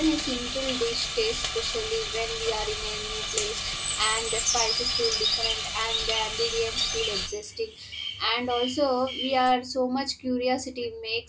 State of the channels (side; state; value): both; identical; correlation 1.00